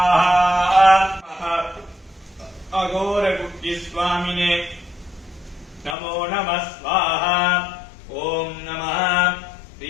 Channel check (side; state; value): right; drops out; at 6.0 s